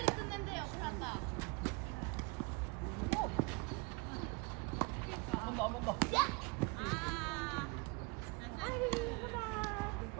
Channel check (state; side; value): quieter; left; 28.6 dB